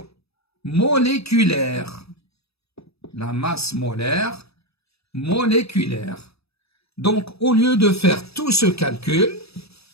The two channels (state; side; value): late; right; 0.78 ms